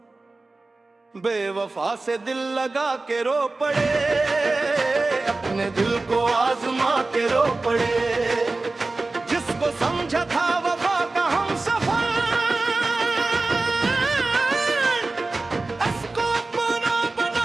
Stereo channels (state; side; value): quieter; left; 3.3 dB